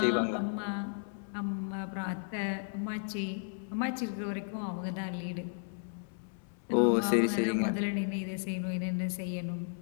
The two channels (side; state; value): right; silent; 55 dB below the other